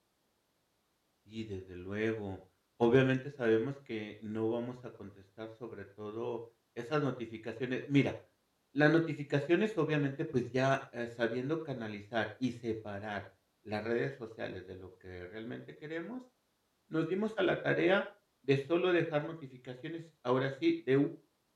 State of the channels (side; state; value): both; identical; correlation 1.00